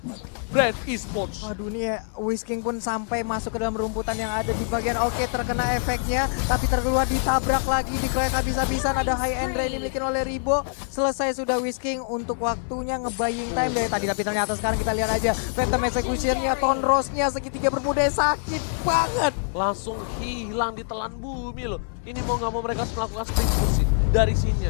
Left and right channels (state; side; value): silent; right; digital silence